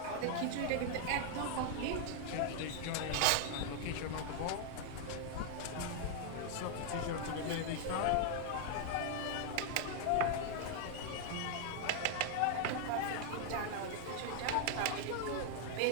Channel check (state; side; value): different; both; correlation 0.00